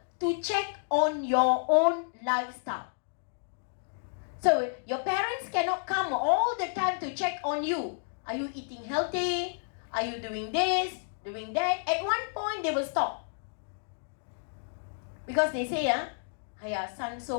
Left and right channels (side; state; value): right; silent; digital silence